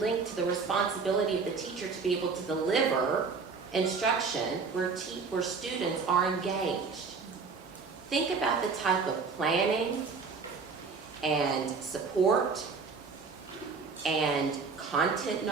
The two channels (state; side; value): quieter; left; 4.9 dB